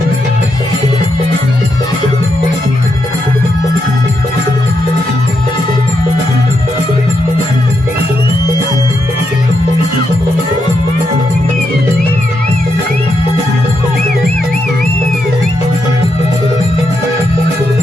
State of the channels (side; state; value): both; normal; correlation 0.82